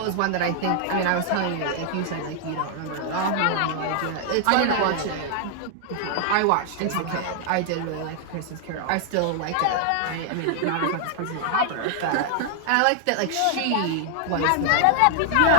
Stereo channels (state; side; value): different; both; correlation 0.00